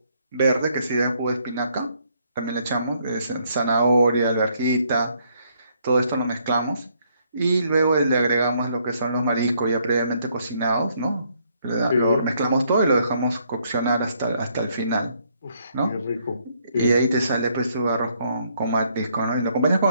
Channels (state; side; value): inverted; both; correlation -0.70